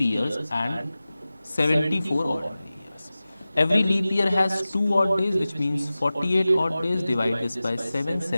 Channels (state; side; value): inverted; both; correlation -0.96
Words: and 74 ordinary years. Every leap year has 2 odd days, which means 48 odd days. Divide this by 7,